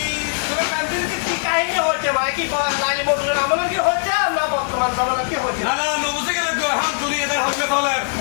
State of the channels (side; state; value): right; silent; digital silence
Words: তোর প্রেমপ্রীতি কি কাহিনী হচ্ছে ভাই কি লালি মধুর আমলে কি হচ্ছে না বর্তমান জামানা কি হচ্ছে না না নবুঝে গেল গো এখন তুই এটা হইবে চলে